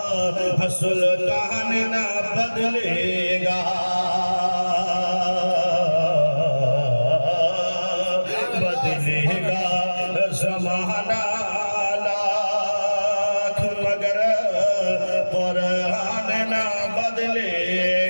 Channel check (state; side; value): inverted; both; correlation -1.00